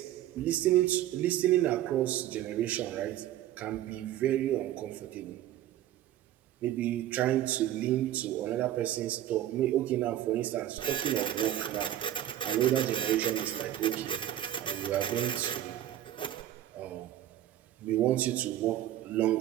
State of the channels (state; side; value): quieter; left; 12.6 dB